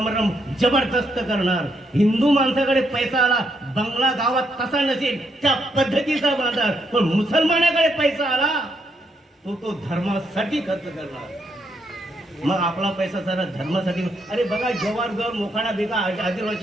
जबरदस्त करणार, हिंदू माणसाकडे पैसा आला बंगला गावात कसा नसेल त्या पद्धतीचा बांधणार, पण मुसलमानाकडे पैसा आला तो धर्मासाठी खर्च करणार। मग आपला पैसा सारा धर्मासाठी। अरे बघा जवाहर मोखाडा बेगा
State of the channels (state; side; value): normal; both; correlation 0.77